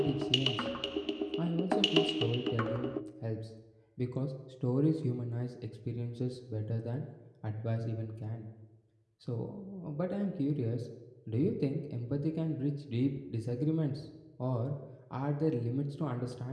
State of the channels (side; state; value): both; identical; correlation 1.00